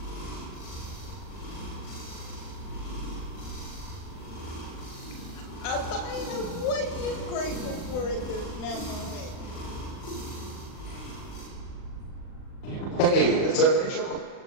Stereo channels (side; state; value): right; late; 39 ms